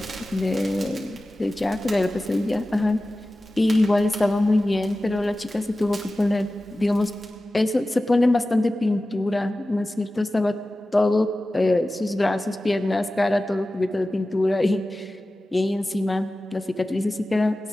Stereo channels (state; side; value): normal; both; correlation 0.95